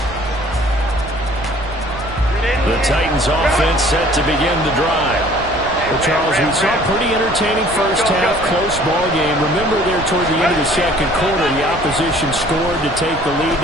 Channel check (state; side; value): noise; right; rumble, 14 dB below the sound